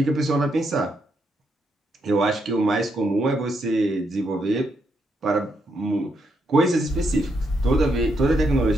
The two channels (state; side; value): normal; both; correlation 0.79